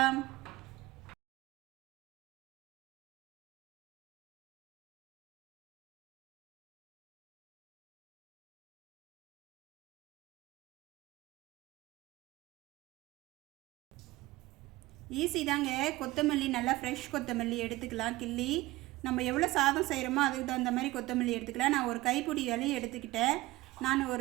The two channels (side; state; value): left; quieter; 18.9 dB